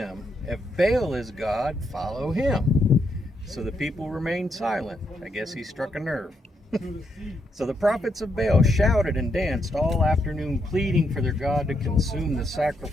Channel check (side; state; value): both; normal; correlation 0.79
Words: If Baal is God, follow him." So the people remained silent. I guess he struck a nerve. So the prophets of Baal shouted and danced all afternoon, pleading for their God to consume the